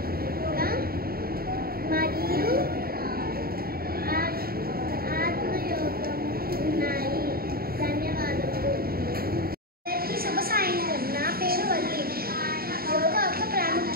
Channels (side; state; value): left; late; 0.44 ms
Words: మరియు ఆత్మయోగము ఉన్నాయి. ధన్యవాదములు. అందరికీ శుభ సాయంత్రం. నా పేరు వల్లి. యోగా యొక్క